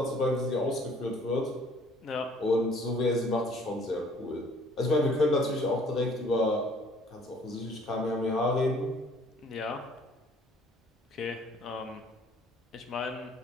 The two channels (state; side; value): normal; both; correlation 0.57